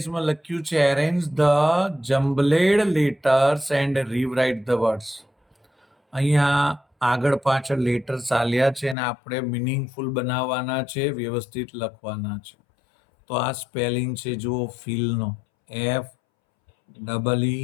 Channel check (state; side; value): drops out; right; at 9.0 s